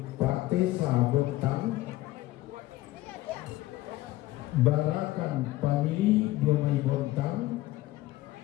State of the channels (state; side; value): quieter; right; 17.1 dB